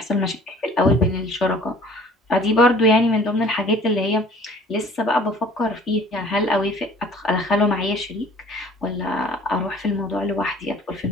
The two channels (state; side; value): normal; both; correlation 0.51